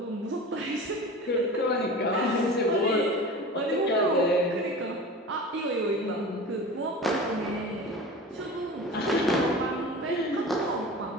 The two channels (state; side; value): normal; both; correlation 0.35